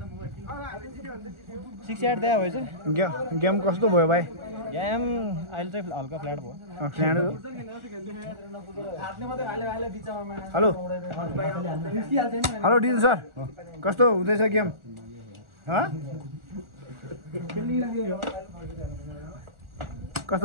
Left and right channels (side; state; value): left; late; 1.4 ms